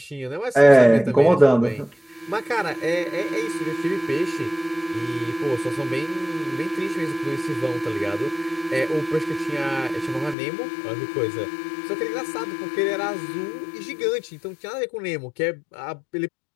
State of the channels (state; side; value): drops out; right; at 10.4 s